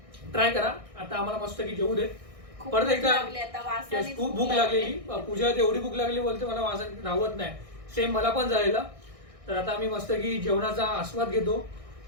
ट्राय करा. आता आम्हाला मस्त की जेवू देत. परत एकदा खूप भूक लागलेली. पूजा एवढी भूक लागली बोलते मला वासन राहत नाही. सेम मला पण झालेलं. तर आता आम्ही मस्त की जेवणाचा आस्वाद घेतो.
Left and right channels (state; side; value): late; left; 1.6 ms